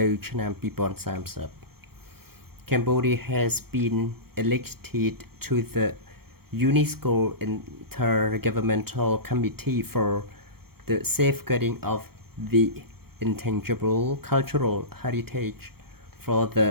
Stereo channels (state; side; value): late; left; 0.95 ms